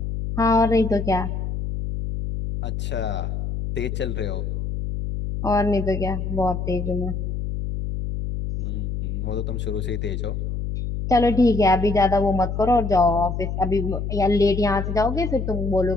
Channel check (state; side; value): noise; left; hum, 3 dB below the sound